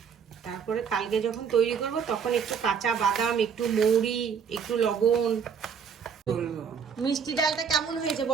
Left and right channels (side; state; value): left; quieter; 6.6 dB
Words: তারপরে কালকে যখন তৈরি করব তখন একটু কাঁচা বাদাম, একটু মৌরি, একটু লবণ। মিষ্টি ডালটা কেমন হয়েছে